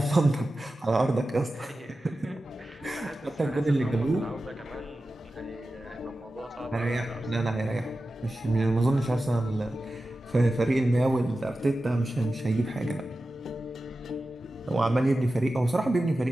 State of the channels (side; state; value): both; normal; correlation 0.94